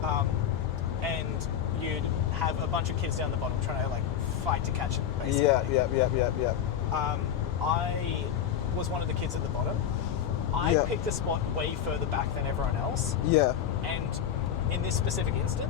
And you'd have a bunch of kids down the bottom trying to fight to catch it, basically. Yeah. I was one of the kids at the bottom. I picked a spot way further back than everyone else. Yeah. And in this specific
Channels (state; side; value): quieter; right; 9.2 dB